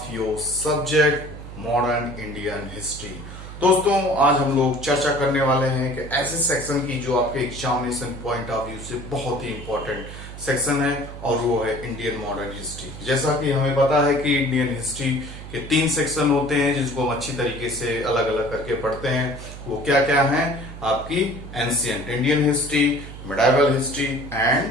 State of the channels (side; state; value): right; noise; hum, 12 dB below the sound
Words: your subject modern Indian history. दोस्तों, आज हम लोग चर्चा करने वाले हैं कि ऐसे सेक्शन की जो आपके एग्जामिनेशन पॉइंट ऑफ व्यू से बहुत ही इंपॉर्टेंट सेक्शन है और वो है इंडियन मॉडर्न हिस्ट्री। जैसा कि हमें पता है कि इंडियन हिस्ट्री के 3 सेक्शन होते हैं जिसको हम अच्छी तरीके से अलग अलग करके पढ़ते हैं। वो क्या क्या हैं? आपकी ancient Indian history, medieval history